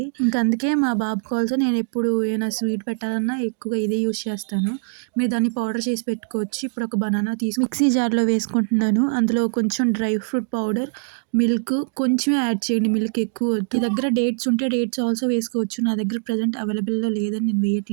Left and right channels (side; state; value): left; silent; 64 dB below the other